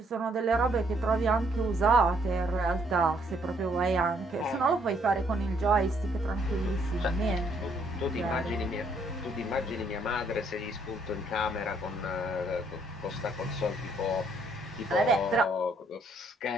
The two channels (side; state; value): both; normal; correlation 0.68